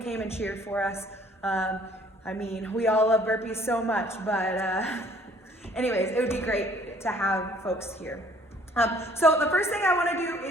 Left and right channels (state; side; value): normal; both; correlation 0.58